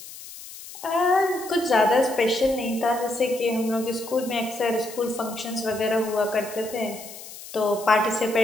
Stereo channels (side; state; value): left; noise; hiss, 15 dB below the sound